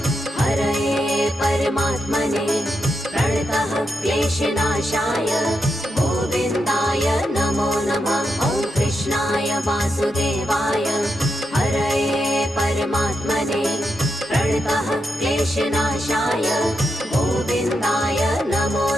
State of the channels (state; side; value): normal; both; correlation 0.84